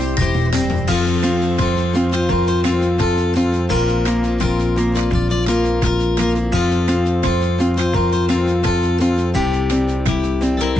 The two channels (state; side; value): normal; both; correlation 0.85